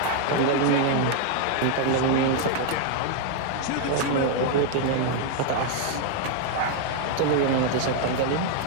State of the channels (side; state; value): both; different; correlation 0.00